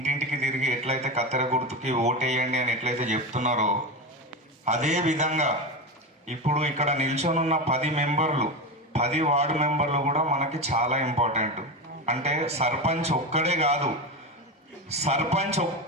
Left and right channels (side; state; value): both; normal; correlation 0.19